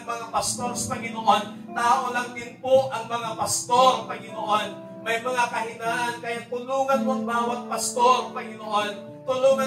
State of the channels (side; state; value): both; identical; correlation 1.00